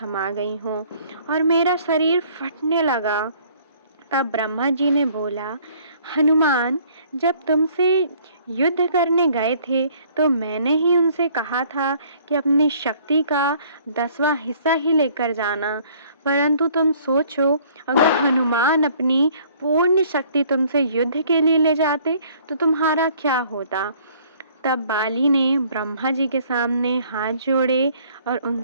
गई हों और मेरा शरीर फटने लगा। तब ब्रह्मा जी ने बोला, हनुमान, जब तुमसे युद्ध करने गए थे तो मैंने ही उनसे कहा था कि अपनी शक्ति का 10वां हिस्सा ही लेकर जाना, परंतु तुम सोचो, अगर हनुमान अपनी पूर्ण शक्ति तुमसे युद्ध के लिए ले जाते तो तुम्हारा क्या होता। तब बाली ने ब्रह्मा जी के सामने हाथ जोड़े और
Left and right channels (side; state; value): both; inverted; correlation -0.58